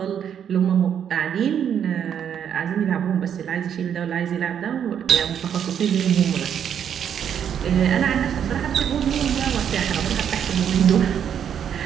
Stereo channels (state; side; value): quieter; left; 8.7 dB